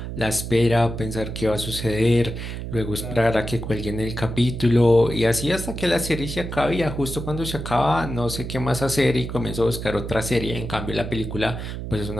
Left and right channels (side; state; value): right; noise; hum, 7 dB below the sound